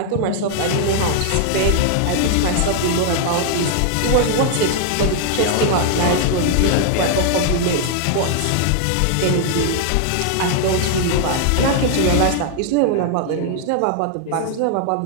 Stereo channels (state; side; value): different; both; correlation 0.00